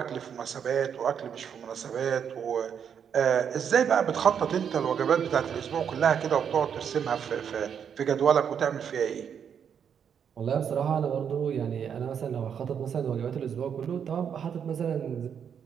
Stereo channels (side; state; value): left; quieter; 7.8 dB